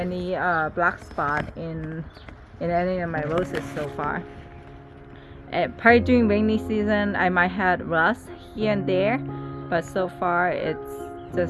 black spot in any of my roses so far. Probably during rainy season I might have rust here and there, but so far it's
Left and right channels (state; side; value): identical; both; correlation 1.00